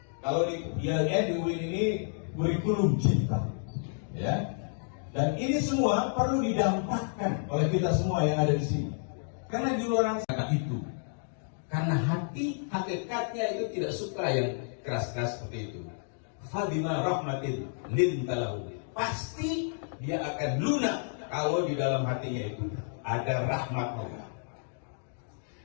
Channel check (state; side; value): silent; right; digital silence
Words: Kalau di UIN ini kurikulum cinta, ya. Dan ini semua perlu didampakkan oleh kita semua yang ada di sini. Karena di luar sana itu, karena hati hakikatnya itu tidak suka yang keras-keras seperti itu. Fabima rahmatin lintalahu. Pasti dia akan lunak kalau di dalam hatinya itu ada rahmat Allah.